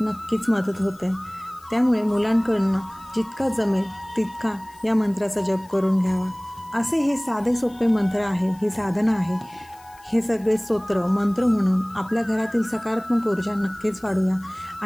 मदत होते. त्यामुळे मुलांकडनं जितका जमेल तितका या मंत्राचा जप करून घ्यावा. असे हे साधे सोपे मंत्र आहे, ही साधना आहे. हे सगळे स्तोत्र मंत्र म्हणून आपल्या घरातील सकारात्मक ऊर्जा नक्कीच वाढूया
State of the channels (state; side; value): noise; left; hiss, 26 dB below the sound